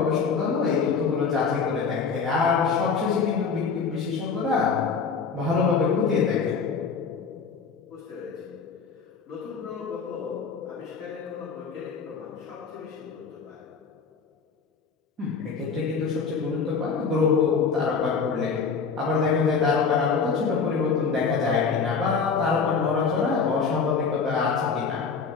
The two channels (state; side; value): quieter; right; 5.5 dB